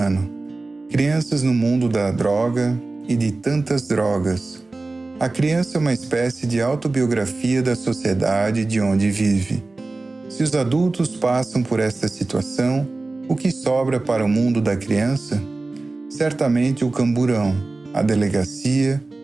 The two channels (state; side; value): quieter; left; 3.3 dB